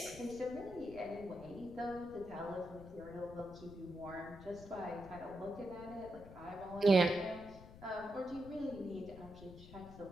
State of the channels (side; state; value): left; noise; rumble, 16 dB below the sound